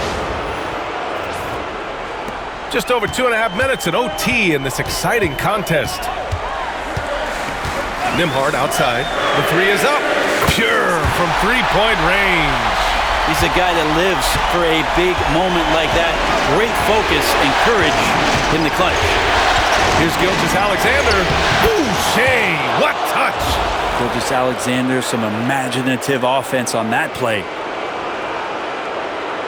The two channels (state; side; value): identical; both; correlation 1.00